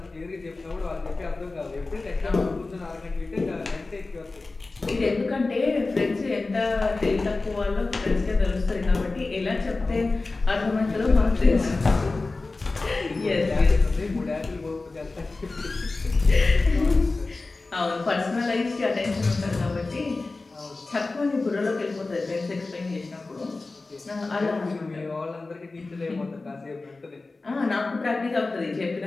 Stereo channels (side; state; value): right; quieter; 3.5 dB